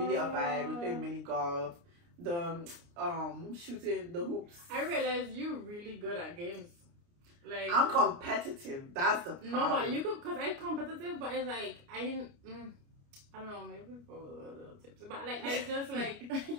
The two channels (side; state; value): left; late; 29 ms